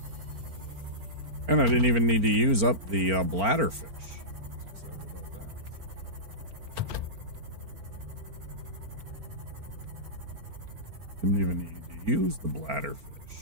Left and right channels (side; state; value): left; late; 4.4 ms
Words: And I didn't even need to use up the bladderfish. Excited about that. Didn't even need to use the bladderfish.